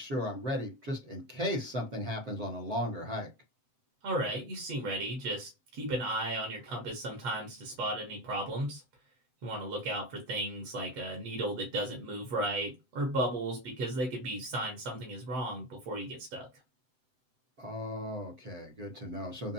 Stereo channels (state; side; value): late; left; 7.8 ms